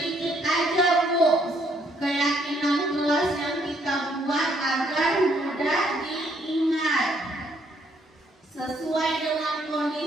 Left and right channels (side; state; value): both; normal; correlation 0.69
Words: aja Bu, keyakinan kelas yang kita buat agar mudah diingat. Sesuai dengan